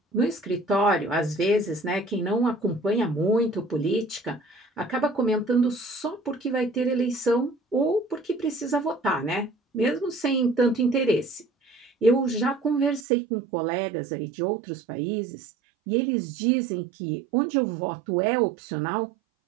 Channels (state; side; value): drops out; left; at 13.1 s